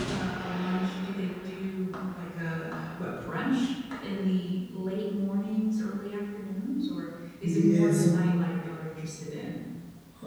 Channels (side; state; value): both; identical; correlation 1.00